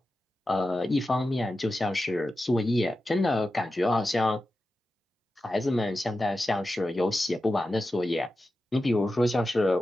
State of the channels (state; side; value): normal; both; correlation 0.92